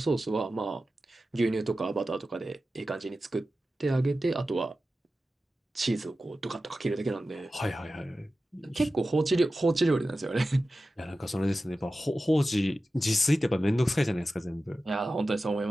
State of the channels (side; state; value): both; normal; correlation 0.94